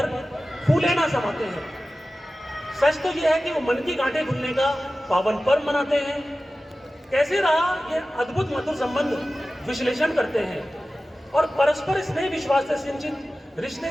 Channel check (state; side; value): normal; both; correlation 0.95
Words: फूले ना समाते हैं। सच तो यह है कि वो मन की गांठें खुलने का पावन पर्व मनाते हैं। कैसे रहा ये अद्भुत मधुर संबंध विश्लेषण करते हैं और परस्पर स्नेह विश्वास से सिंचित रिश्ते